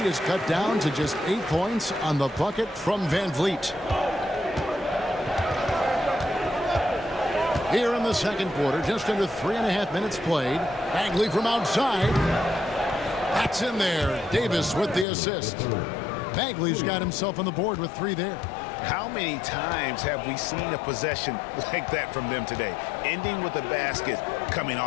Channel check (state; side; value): drops out; right; at 15.1 s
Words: is cut down to just 8 points on the bucket from Van Vliet. Here in the second quarter, just under 3.5 minutes played. Bagley from outside. That's in there. Davis with the assist. Bagley's got himself on the board with 3 there. How many times have we seen a possession like that from them today, ending with a basket coming